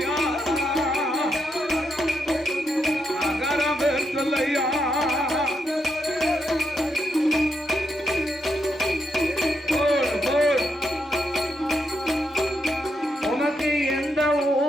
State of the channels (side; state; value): both; normal; correlation 0.80